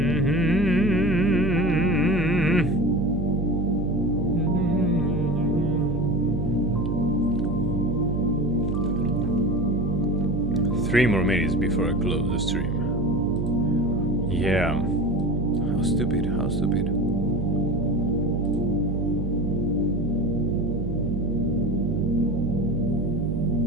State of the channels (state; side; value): noise; right; hum, 3 dB below the sound